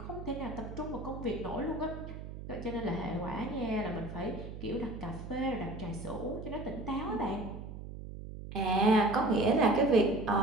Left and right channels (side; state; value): right; noise; hum, 10 dB below the sound